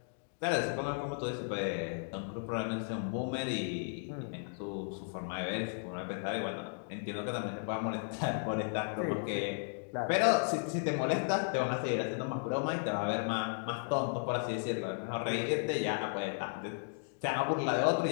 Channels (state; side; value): silent; right; digital silence